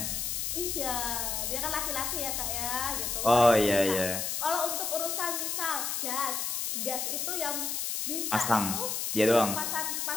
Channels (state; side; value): noise; left; hiss, 1 dB below the sound